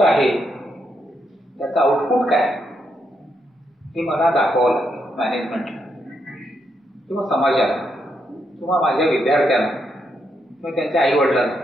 आहे त्याचं आउटपुट काय हे मला दाखवावं लागेल मॅनेजमेंटला किंवा समाजाला किंवा माझ्या विद्यार्थ्यांना किंवा त्यांच्या आईवडिलांना.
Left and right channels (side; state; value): both; normal; correlation 0.80